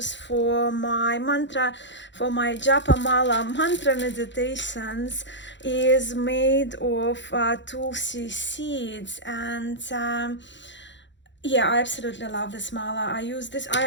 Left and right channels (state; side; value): late; right; 0.53 ms